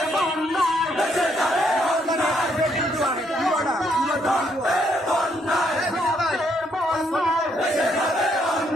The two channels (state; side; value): normal; both; correlation 0.72